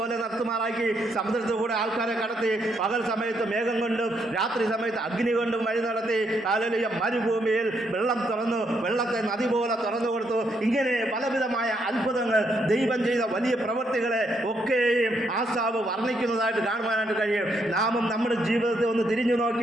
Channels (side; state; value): both; normal; correlation 0.76